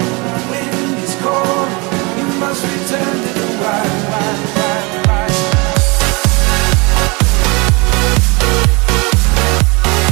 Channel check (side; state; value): left; quieter; 28.0 dB